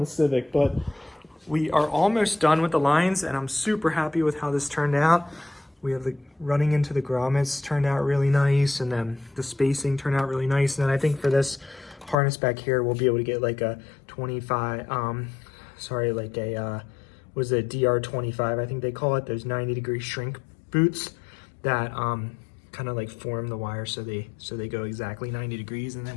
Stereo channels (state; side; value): drops out; right; at 12.2 s